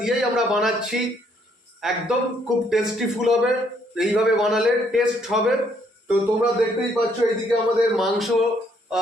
দিয়েই আমরা বানাচ্ছি। একদম খুব টেস্টিফুল হবে, এইভাবে বানালে টেস্ট হবে। তো তোমরা দেখতেই পাচ্ছ এইদিকে আমাদের মাংস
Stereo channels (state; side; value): normal; both; correlation 0.69